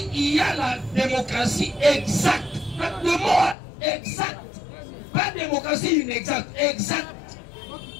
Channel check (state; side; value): drops out; right; at 3.6 s